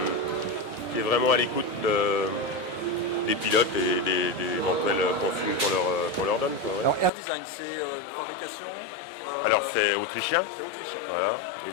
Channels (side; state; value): right; drops out; at 7.1 s